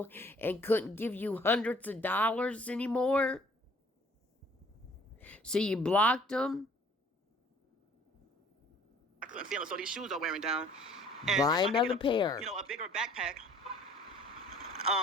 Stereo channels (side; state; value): both; normal; correlation 0.56